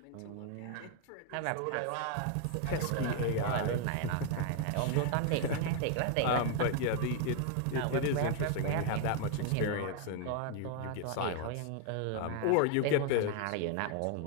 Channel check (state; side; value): different; both; correlation 0.00